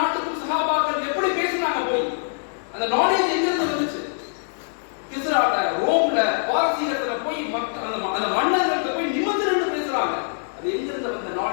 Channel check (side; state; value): right; silent; digital silence